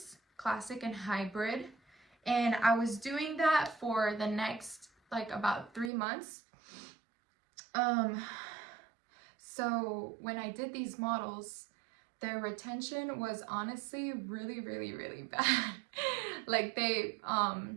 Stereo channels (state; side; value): drops out; left; at 5.9 s